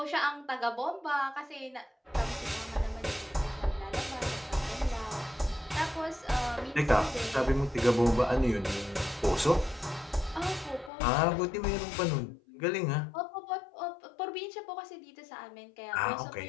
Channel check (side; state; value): right; drops out; at 10.9 s